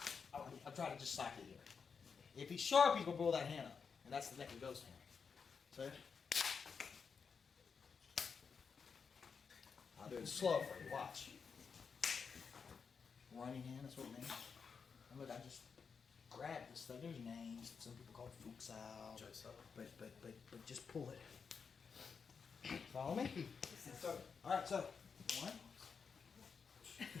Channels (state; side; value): quieter; right; 5.8 dB